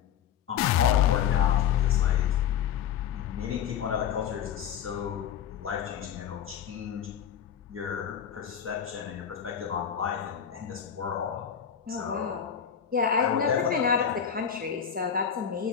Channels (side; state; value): right; quieter; 8.7 dB